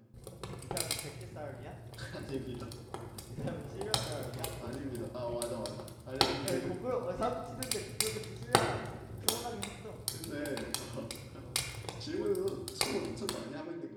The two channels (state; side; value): identical; both; correlation 1.00